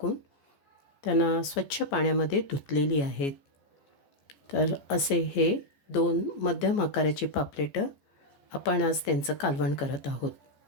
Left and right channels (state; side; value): late; right; 14 ms